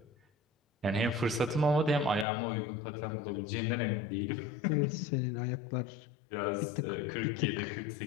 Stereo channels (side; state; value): right; drops out; at 2.2 s